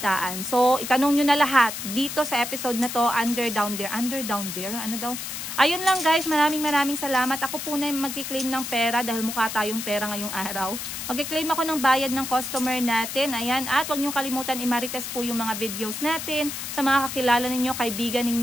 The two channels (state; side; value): noise; left; hiss, 6 dB below the sound